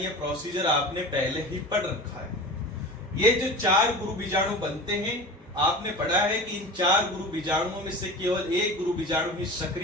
ये प्रोसीजर आपने पहले ही पढ़ रखा है। ये जो 4 गुरु बीजाणु बनते हैं आपने पढ़ा है कि इन 4 गुरु बीजाणुओं में से केवल एक गुरु बीजाणु ही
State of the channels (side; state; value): both; normal; correlation 0.34